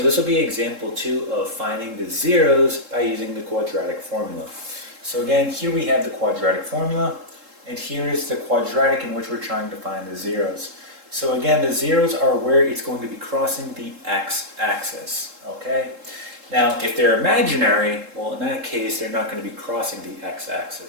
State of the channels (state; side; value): late; left; 3.7 ms